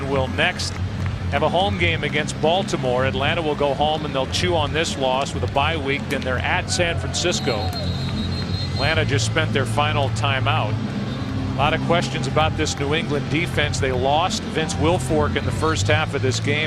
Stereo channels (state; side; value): identical; both; correlation 1.00